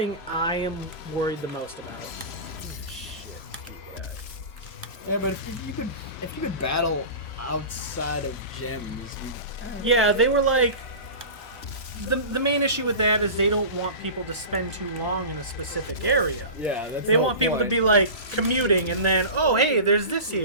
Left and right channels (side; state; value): right; late; 3.0 ms